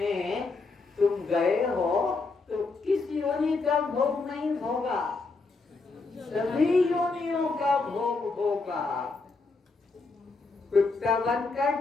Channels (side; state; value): right; quieter; 3.9 dB